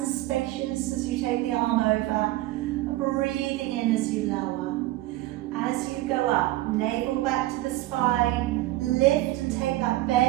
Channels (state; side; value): quieter; left; 16.9 dB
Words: spacious as you take the arm over, and breathing in as you lower. As you go up, navel back to the spine, lift and take that